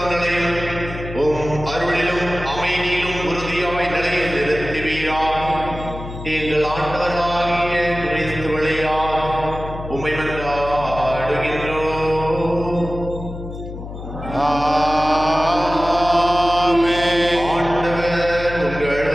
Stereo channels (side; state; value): left; noise; hum, 10 dB below the sound